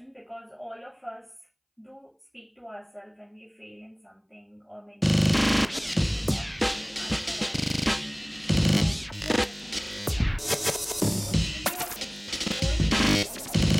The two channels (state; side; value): identical; both; correlation 1.00